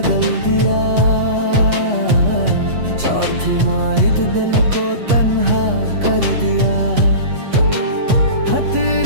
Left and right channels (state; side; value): late; left; 8.1 ms